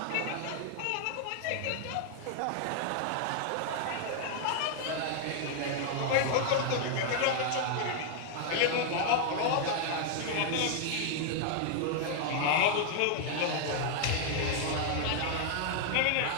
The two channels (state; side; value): different; both; correlation 0.00